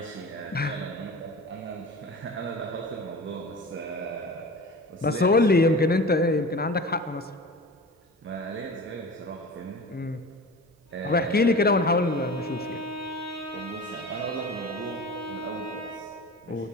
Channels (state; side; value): normal; both; correlation 0.35